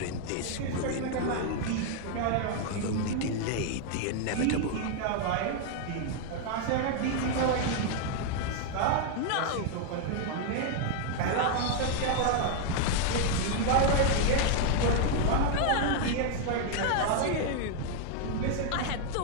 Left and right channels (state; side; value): different; both; correlation 0.00